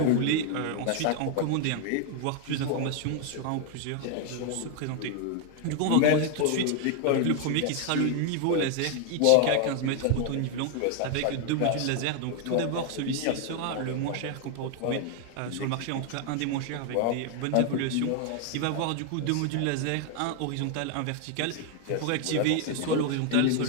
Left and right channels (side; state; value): both; different; correlation 0.00